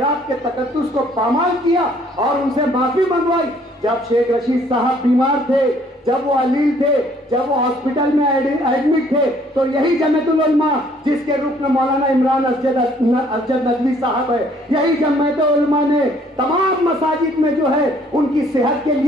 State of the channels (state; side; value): normal; both; correlation 0.61